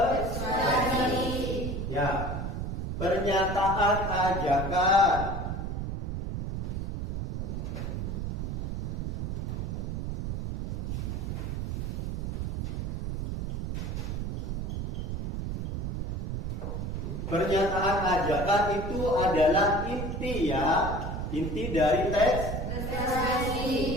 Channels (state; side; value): noise; right; rumble, 2 dB below the sound